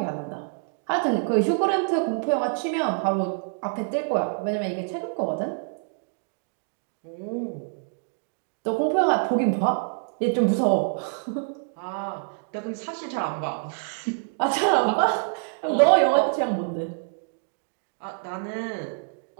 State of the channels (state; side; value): silent; left; digital silence